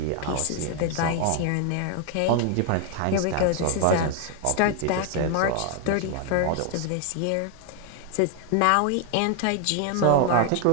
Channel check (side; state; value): both; different; correlation 0.00